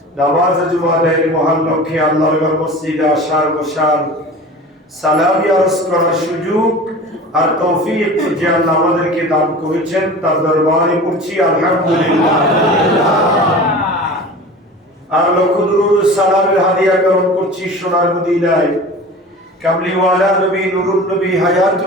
নামাজ জুমার মহান লক্ষ্যে আল্লাহর ঘর মসজিদে আসার বসার সালামি আরজ করার সুযোগ আর তৌফিক যে আল্লাহ আমাদেরকে দান করেছেন তার দরবারে পড়ছি আলহামদুলিল্লাহ আর লক্ষ দুরূদ সালামের হাদিয়া গ্রহণ করছি সোনার মদিনায় কামলিওয়ালা নবী নুরুন নবী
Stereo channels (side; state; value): both; normal; correlation 0.37